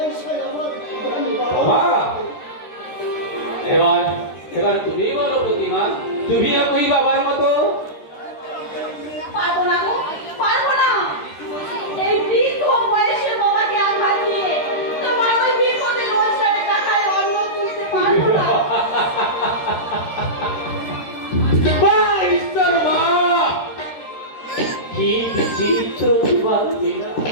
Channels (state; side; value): late; right; 13 ms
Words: আমার বাবা এবার তুমি বলো প্রতিমা, তুমিও কই বাবার মতো? পারবো না গো, পারবো না। এই বৃদ্ধ বয়সের বাবাকে আঘাত দিয়ে তোমার ওই বিপদে রোজগারের টাকায় অন্ন তুলতে পারবো না। মা, ঈশ্বর মা, কি বিচিত্র তোমার লীলা,